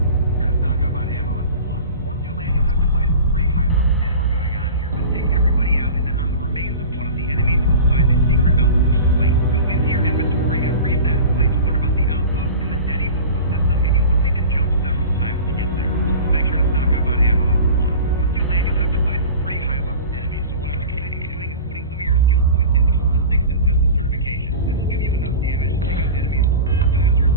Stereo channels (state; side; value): inverted; both; correlation -0.36